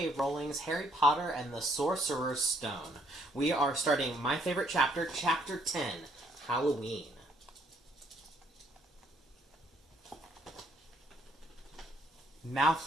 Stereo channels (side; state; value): both; normal; correlation 0.67